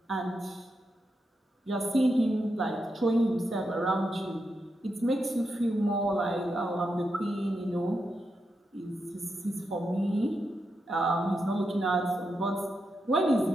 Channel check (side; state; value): both; normal; correlation 0.86